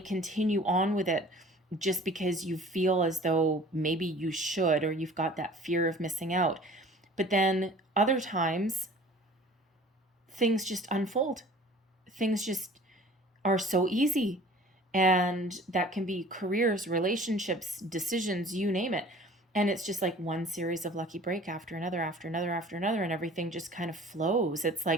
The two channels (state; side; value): normal; both; correlation 0.47